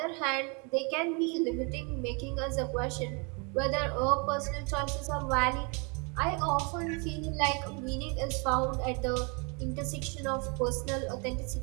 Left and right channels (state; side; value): quieter; left; 33.3 dB